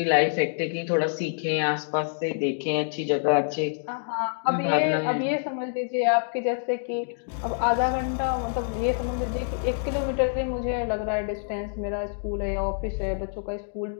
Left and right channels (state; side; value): silent; right; digital silence